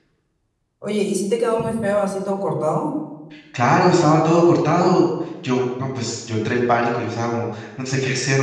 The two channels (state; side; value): identical; both; correlation 1.00